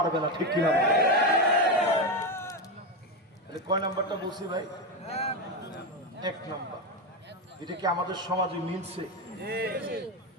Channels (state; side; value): normal; both; correlation 0.12